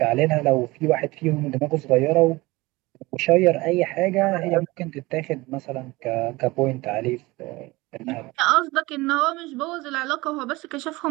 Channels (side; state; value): left; quieter; 21.5 dB